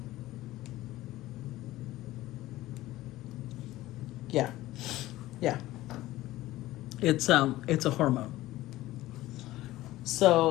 Yeah. It's a hormone.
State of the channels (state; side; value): quieter; right; 16.5 dB